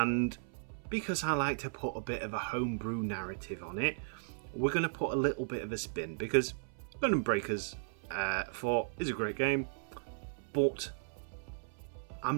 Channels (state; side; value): silent; left; 54 dB below the other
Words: because I like to put a bit of a homebrew narrative on it, we're going to put a little bit of a spin, because Gundam Breakers 4 is a great game, but